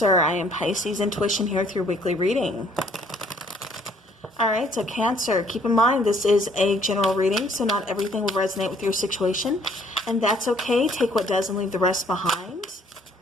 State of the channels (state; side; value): normal; both; correlation 0.62